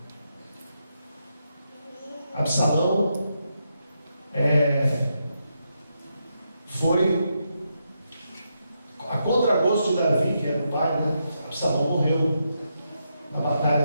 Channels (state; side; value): inverted; both; correlation -0.83